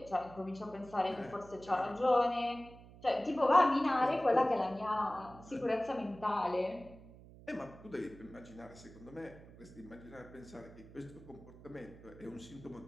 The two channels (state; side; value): noise; right; hum, 19 dB below the sound